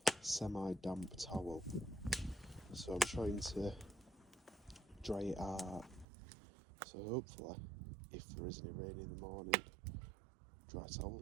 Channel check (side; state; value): left; drops out; at 6.1 s